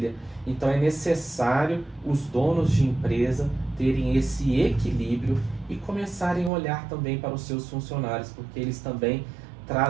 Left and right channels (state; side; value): drops out; left; at 6.5 s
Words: Então é necessário os donos de empresa terem esse equilíbrio e começarem a olhar também para os seus funcionários, porque eles também